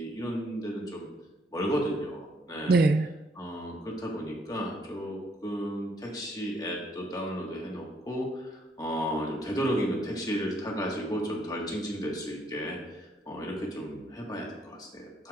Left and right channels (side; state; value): both; normal; correlation 0.69